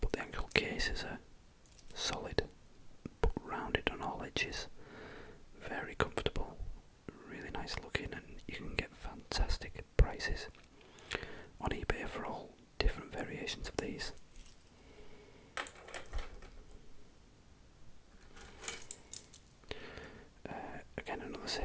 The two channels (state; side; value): identical; both; correlation 1.00